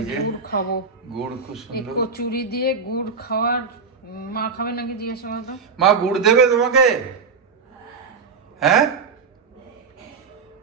যে গুড় খাবো, গুড় খুব সুন্দর। কচুরি দিয়ে গুড় খাওয়ার, মা খাবে নাকি জিজ্ঞেস করো তো। মা গুড় দেবে তোমাকে? হ্যাঁ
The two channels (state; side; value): quieter; left; 5.1 dB